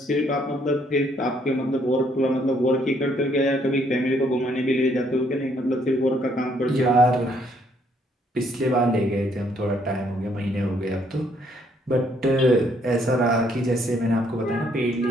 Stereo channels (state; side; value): normal; both; correlation 0.68